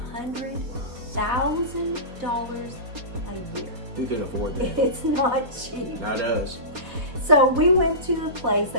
a year. Who can afford that? It's not cheap. Not us. So we went to a place,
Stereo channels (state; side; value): late; left; 4.4 ms